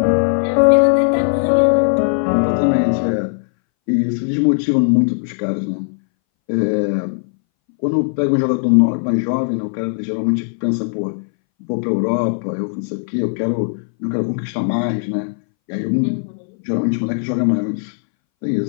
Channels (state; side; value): silent; right; 63 dB below the other